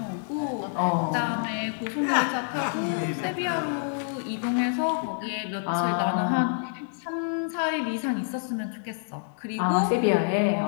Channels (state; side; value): silent; right; digital silence